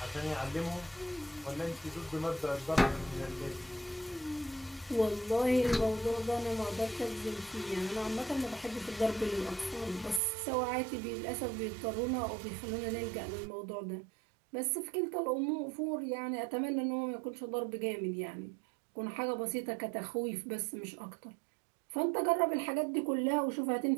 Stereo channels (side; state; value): left; drops out; at 10.2 s